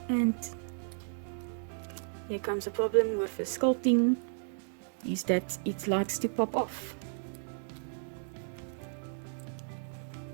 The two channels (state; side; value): silent; left; digital silence